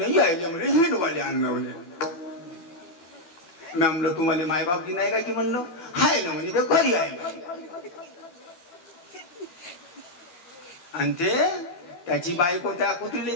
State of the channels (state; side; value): late; right; 12 ms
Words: यायले म्हणे हिंडवाले आणलं म्हणे मी म्हणलं तुम्हाला मायबापची नाही का की म्हणलं हाय ना म्हणे ते घरी आहे आणि ते त्याची बायको त्या कुत्रीला